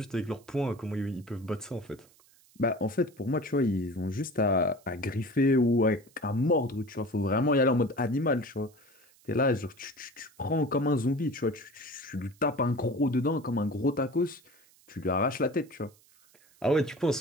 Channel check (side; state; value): right; noise; hiss, 29 dB below the sound